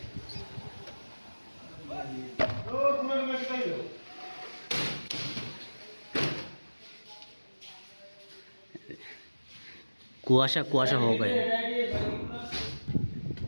कुआशा कुआशा हो गया।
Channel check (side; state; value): both; inverted; correlation -1.00